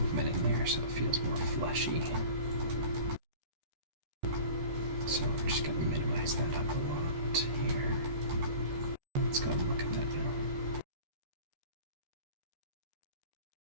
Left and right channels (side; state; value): left; late; 13 ms